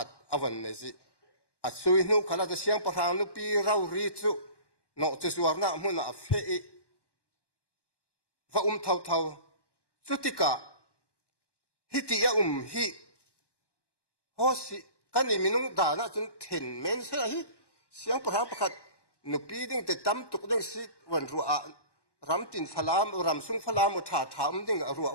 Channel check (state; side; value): late; right; 1.1 ms